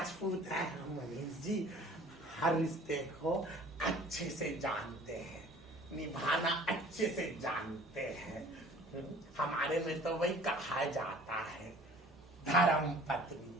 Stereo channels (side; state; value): both; normal; correlation 0.49